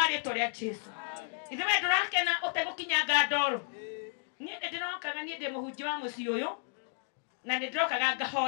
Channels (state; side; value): silent; right; 56 dB below the other